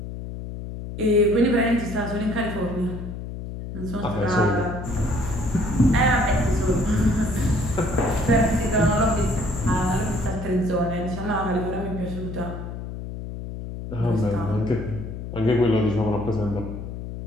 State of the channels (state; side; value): noise; left; hum, 8 dB below the sound